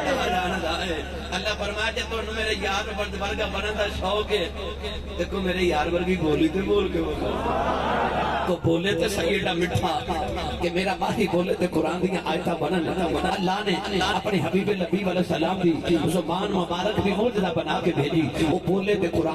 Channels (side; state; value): both; identical; correlation 1.00